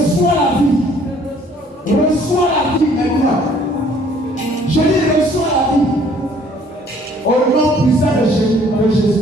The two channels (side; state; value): both; normal; correlation 0.59